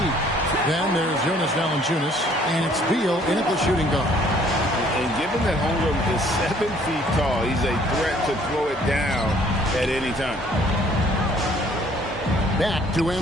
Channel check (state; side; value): normal; both; correlation 0.59